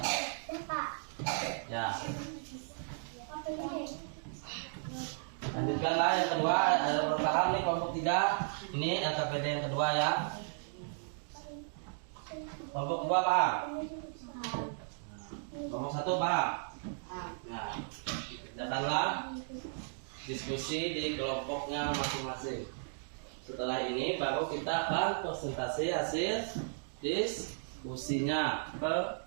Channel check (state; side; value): silent; left; digital silence